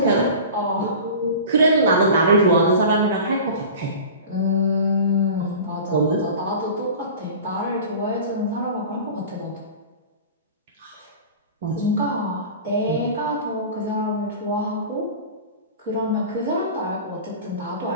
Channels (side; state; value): both; inverted; correlation -0.37